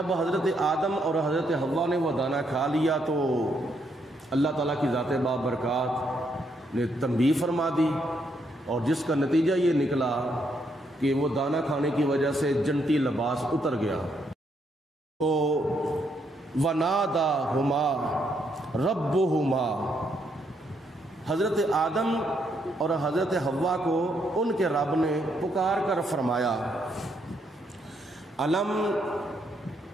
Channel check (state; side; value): normal; both; correlation 0.75